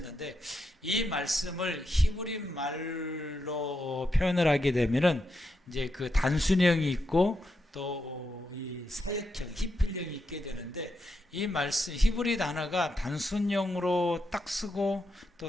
이 말씀을 히브리 말로 표현을 하게 되면은 이제 그 단순형이 있고 또 이 사역형, 히필형이 있게 되는데 이 말씀 히브리 단어가 단순형으로 딱 쓰고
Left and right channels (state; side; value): normal; both; correlation 0.84